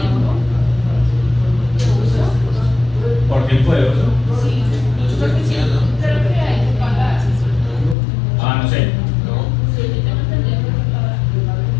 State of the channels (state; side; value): drops out; right; at 8.0 s